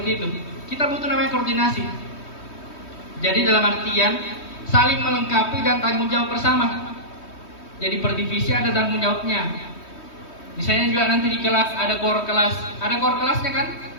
itu. Kita butuh namanya koordinasi. Jadi dalam artian saling melengkapi dan tanggung jawab bersama. Jadi per divisi ada tanggung jawabnya. Misalnya juga nanti di kelas ada core kelasnya kan?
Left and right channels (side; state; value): right; late; 3.2 ms